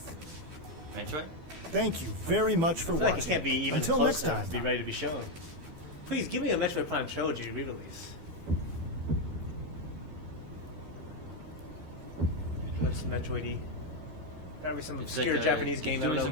Metroid? Thank you very much for I feel like it watching. can't be even Until close next enough time. to be ready to be shown. Please give me a Metroid Prime Trilogy re-release. Looks Metroid-y. Probably some It's obscure like Japanese game I don't doing know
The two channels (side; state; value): left; late; 12 ms